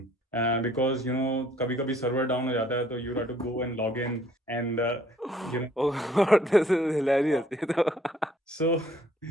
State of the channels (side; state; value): both; normal; correlation 0.61